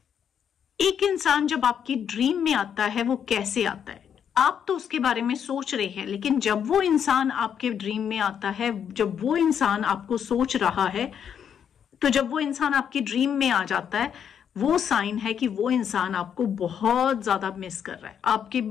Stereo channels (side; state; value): right; quieter; 8.2 dB